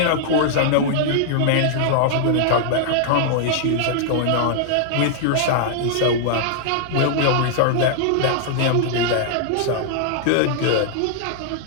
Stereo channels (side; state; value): both; different; correlation -0.01